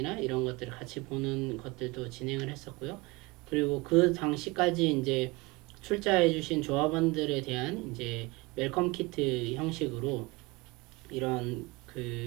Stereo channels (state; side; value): quieter; left; 23.9 dB